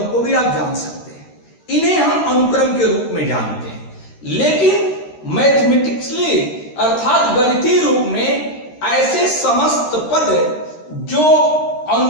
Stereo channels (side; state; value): right; late; 13 ms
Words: को भी आप जान सकते हैं। इन्हें हम अनुक्रम के रूप में जानते हैं। लेकिन मैथमेटिक्सली अर्थात गणितीय रूप में ऐसे समस्त पद जो